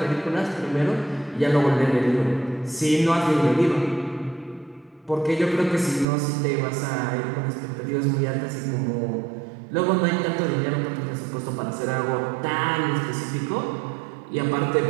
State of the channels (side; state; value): left; drops out; at 6.1 s